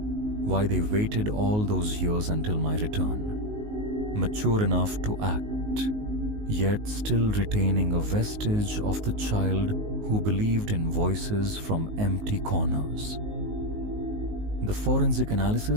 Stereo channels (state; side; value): late; left; 19 ms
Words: why they waited all those years until my return, mature enough to act, yet still retaining a vestige of the child who believed in voices from empty corners. The forensic